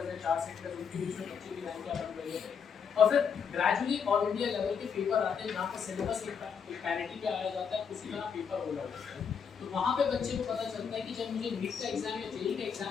में 4 सेक्टर उनके बीच में बच्चे की रैंक क्या बन रही है, और फिर ग्रेजुअली ऑल इंडिया लेवल के पेपर आते हैं जहाँ पर सिलेबस एक पैरिटी पे आया जाता है, उसी तरह पेपर हो जाता है। तो वहाँ पे बच्चे को पता चलता है कि जब मुझे नीट का एग्जाम या जेईई का एग्जाम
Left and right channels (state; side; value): quieter; right; 6.7 dB